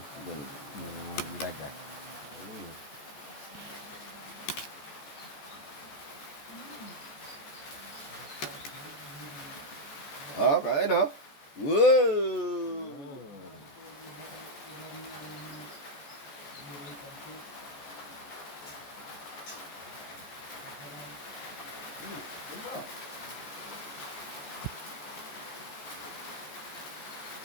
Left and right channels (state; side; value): late; right; 14 ms